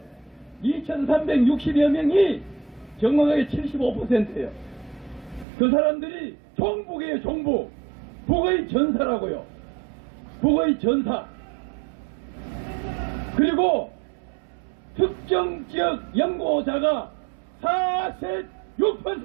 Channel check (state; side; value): drops out; left; at 5.5 s